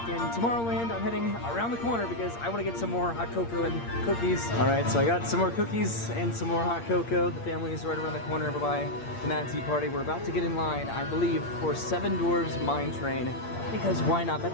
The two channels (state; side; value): late; right; 8.6 ms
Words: in Tomorrowland. I'm heading around the corner because I want to get some more hot cocoa and cookies. All right, so I got some more cookies and some more hot cocoa. The family is right around the corner over by the Mad Tea Party. We're about to get in line, I believe, for Seven Dwarfs Mine Train. Because why not?